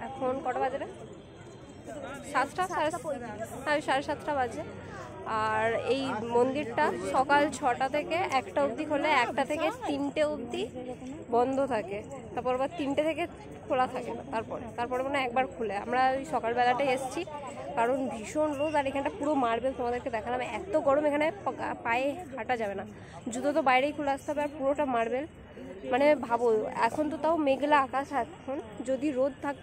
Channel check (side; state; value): both; identical; correlation 1.00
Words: এখন কটা বাজে না, 7টা, 7:30 বাজে। আর এই মন্দিরটা সকাল 6টা থেকে 1টা অবধি খোলে, 1টা থেকে 3টে অবধি বন্ধ থাকে, তারপর আবার 3টে থেকে খোলা থাকে না। তারপরে মানে একবার খুলে আমরা ওই সকালবেলাটাই এসেছি, কারণ ভীষণ রোদ। আর এখানটা পুরো মার্বেল, তোমাদেরকে দেখালাম। এত গরম, এখানে পায়ে হাঁটা যাবে না, জুতো তো বাইরেই খুলে আসতে হবে। আর পুরোটা মার্বেল, মানে ভাবো এখন তো তাও মেঘলা আকাশ। এখন যদি রোদ থাকতো